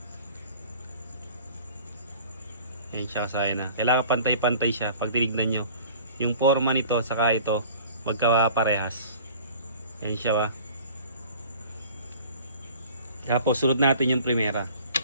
Yan siya kasayan kailangan pantay-pantay siya. Pag tinignan nyo yung forma nito saka ito magkaparehas. Yan siya Tapos sunod natin yung primera.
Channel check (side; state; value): both; inverted; correlation -0.46